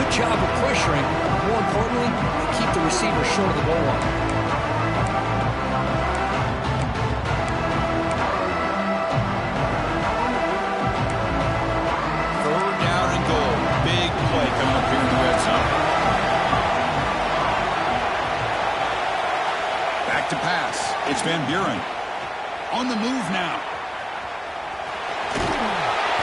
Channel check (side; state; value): both; identical; correlation 1.00